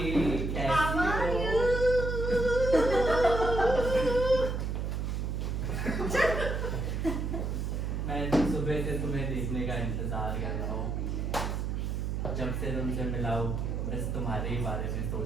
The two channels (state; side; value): noise; right; hum, 1 dB below the sound